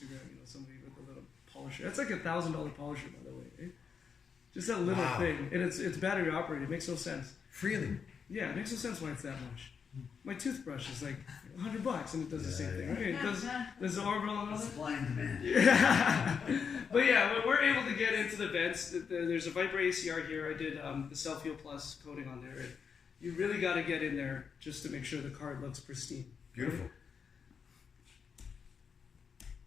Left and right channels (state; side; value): quieter; right; 6.4 dB